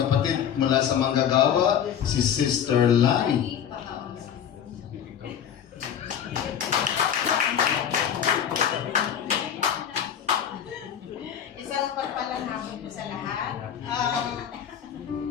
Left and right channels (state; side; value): quieter; right; 8.9 dB